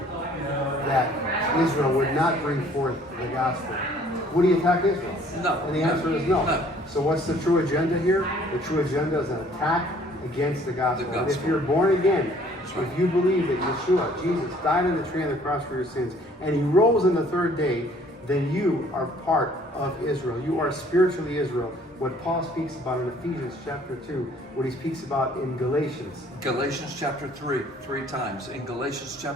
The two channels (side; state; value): both; normal; correlation 0.58